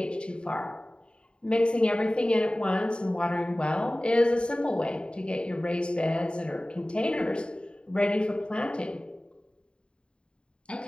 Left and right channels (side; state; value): right; late; 0.052 ms